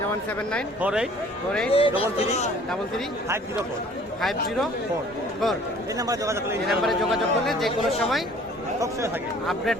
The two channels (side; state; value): both; normal; correlation 0.53